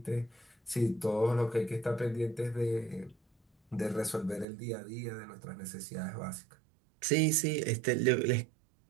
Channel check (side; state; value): left; drops out; at 4.5 s